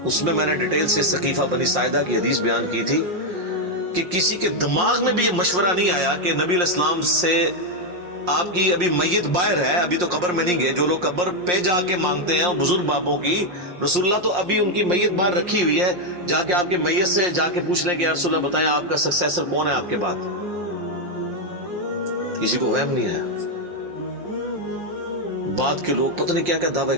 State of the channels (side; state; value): left; late; 5.6 ms